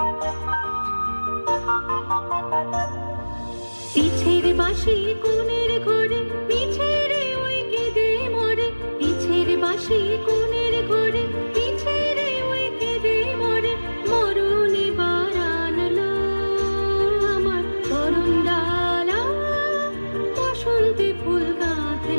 পিছের বাঁশি কোণের ঘরে পিছের ওই কেঁদে মরে, পিছের বাঁশি কোণের ঘরে পিছের ওই কেঁদে মরে। মরণ এবার আনলো আমার করুণ ডালা, বসন্তে ফুল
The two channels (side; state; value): both; inverted; correlation -1.00